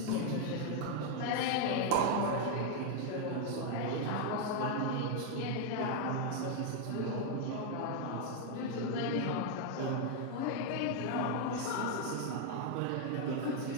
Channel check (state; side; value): different; both; correlation 0.00